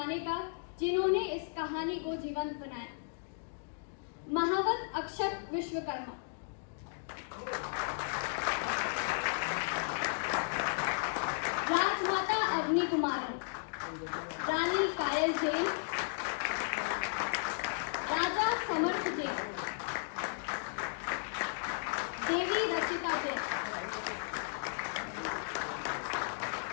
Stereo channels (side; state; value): right; silent; digital silence